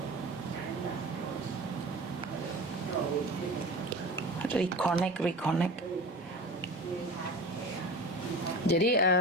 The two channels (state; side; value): normal; both; correlation 0.34